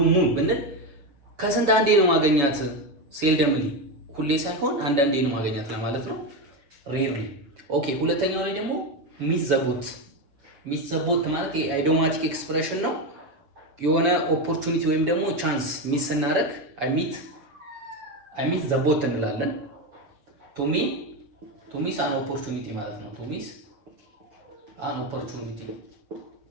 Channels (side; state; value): left; late; 7.3 ms